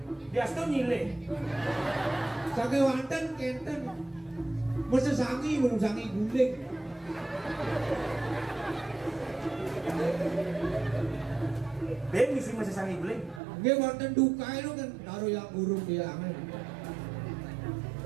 Bias tuh nyile. Sange wanten kenten. Masa sangi belum sangi guling. Ben misi masa sangi guling. Nggih wonten duka itu kan taruh yang burung dia aneh.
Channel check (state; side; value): drops out; left; at 13.4 s